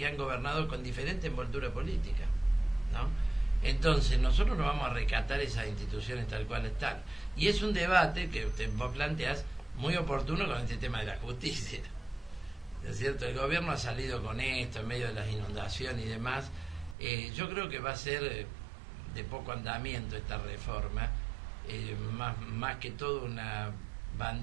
han gobernado con diferente envoltura política, ¿no? Entonces nosotros no vamos a rescatar esas instituciones tal cual están. Y es un debate que vos planteás muy oportuno con este tema de la justicia. ¿Es cierto? El gobierno ha salido con esto en medio de las inundaciones y demás. Yo creo que va a ser de poco andamiento esta reforma, más que todo una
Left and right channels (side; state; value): left; drops out; at 16.9 s